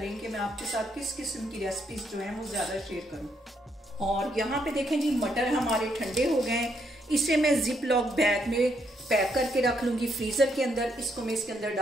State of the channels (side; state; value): both; normal; correlation 0.75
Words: कि मैं आपके साथ किस किस्म की रेसिपीज जो हैं वो ज़्यादा शेयर करूं। और यहाँ पे देखें जी, मटर हमारे ठंडे हो गए हैं। इसे मैं जिप लॉक बैग में पैक करके रख लूँगी फ्रीज़र के अंदर। इसको मैं इसके अंदर